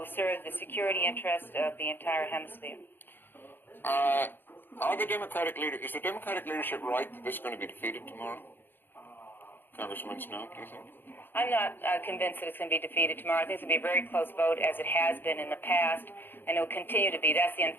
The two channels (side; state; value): right; late; 0.097 ms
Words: serve the security interest of the entire hemisphere. Is the Democratic leadership right that this is going to be defeated tomorrow? Congressman Snowe, do you think? I'm not convinced that it's going to be defeated tomorrow. I think it's going to be a very close vote, as it has been in the past, and it will continue to be. That's the